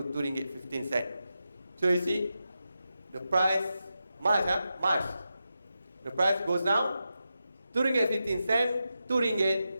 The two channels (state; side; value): inverted; both; correlation -0.89